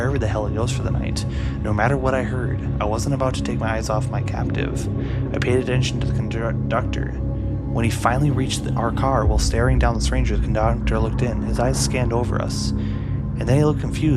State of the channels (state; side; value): identical; both; correlation 1.00